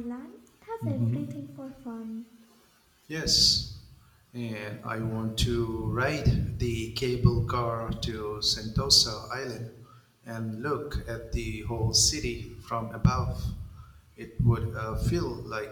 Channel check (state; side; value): identical; both; correlation 1.00